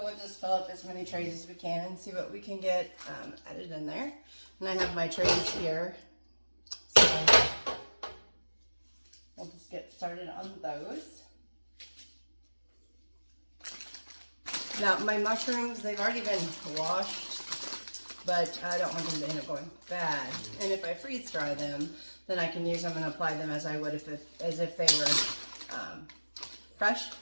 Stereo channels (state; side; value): inverted; both; correlation -1.00